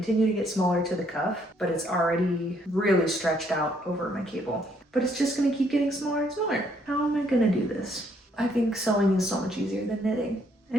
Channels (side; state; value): both; normal; correlation 0.69